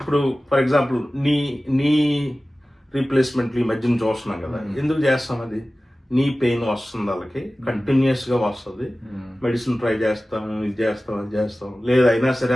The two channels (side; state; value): both; normal; correlation 0.96